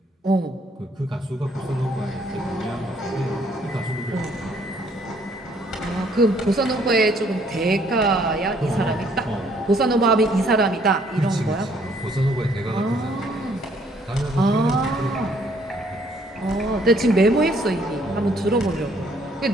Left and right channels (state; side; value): normal; both; correlation 0.64